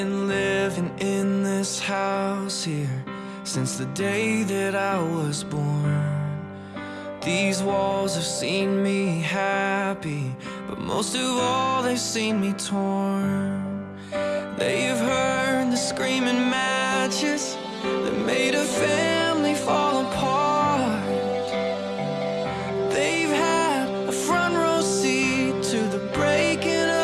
living in this house here since the day that I was born. These walls have seen me happy, but most of all they've seen me torn. They've heard the screaming matches that made a family fall apart. They've had a front row seat to the breaking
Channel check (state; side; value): identical; both; correlation 1.00